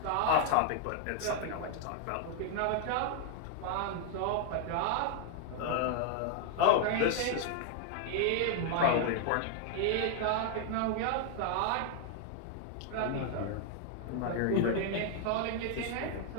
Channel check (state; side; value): different; both; correlation 0.00